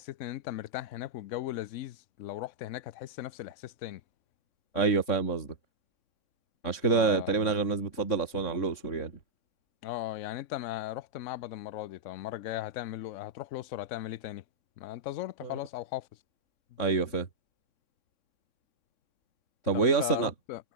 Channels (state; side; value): late; right; 3.6 ms